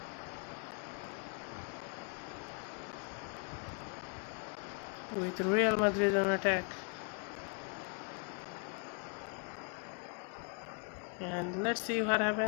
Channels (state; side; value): quieter; right; 36.0 dB